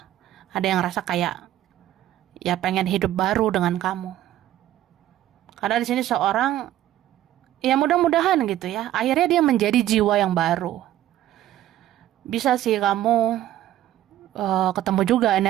Ada yang ngerasa kayak, ya pengen hidup baru dengan kamu. Karena di sini seorang, ya mudah-mudahan gitu ya, akhirnya dia menjadi jiwa yang baru. Bisa sih kamu ketemu juga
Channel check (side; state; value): left; quieter; 13.2 dB